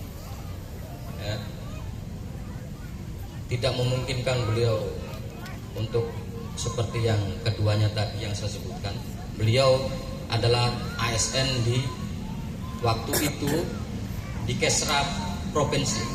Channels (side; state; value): both; identical; correlation 1.00